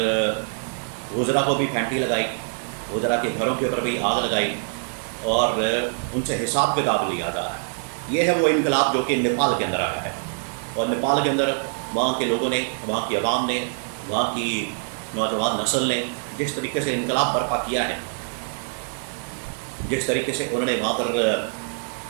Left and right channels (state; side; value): silent; left; 62 dB below the other